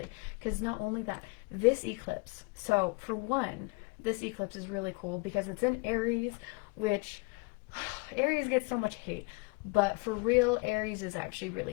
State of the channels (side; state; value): right; quieter; 29.0 dB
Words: because not only that, this eclipse. So for one, this eclipse is really cool because it's in Aries, which Aries gets so much hate, but for real, Aries is actually